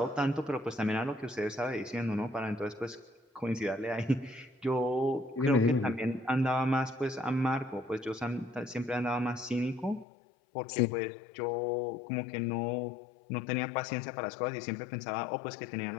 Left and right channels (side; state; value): right; drops out; at 10.1 s